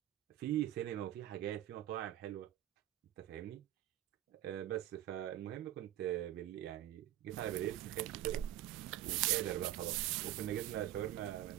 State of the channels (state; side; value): quieter; left; 13.3 dB